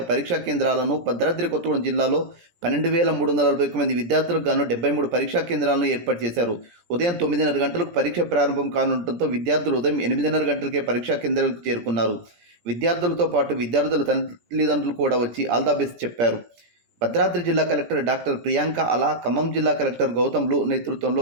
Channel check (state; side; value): late; left; 17 ms